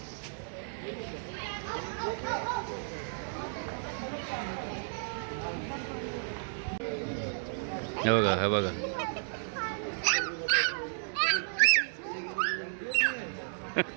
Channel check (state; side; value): silent; left; digital silence